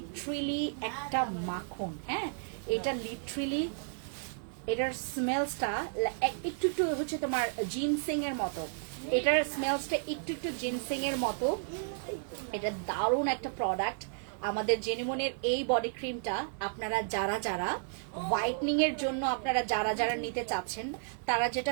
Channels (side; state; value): left; silent; digital silence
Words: একটা মাখন, হ্যাঁ এটা লিটারেলি এটার স্মেলসটা একটু হচ্ছে তোমার জিনসিং এর মতো, এটার স্মেলসটা একটু জিনসিং এর মতো। এটা দারুণ একটা প্রোডাক্ট। আমাদের জেনেমনের এই বডি ক্রিমটা আপনারা যারা হোয়াইটনিং এর জন্য আপনারা যারা নিতে চাচ্ছেন, তারা